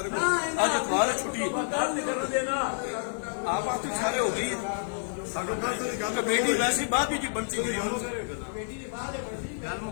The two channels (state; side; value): silent; right; digital silence